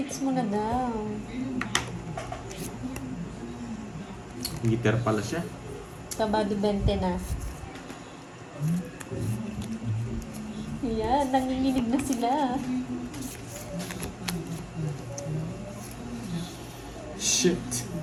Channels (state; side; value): identical; both; correlation 1.00